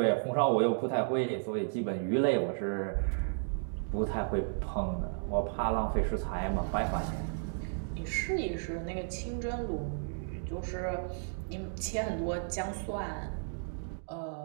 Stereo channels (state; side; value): silent; left; digital silence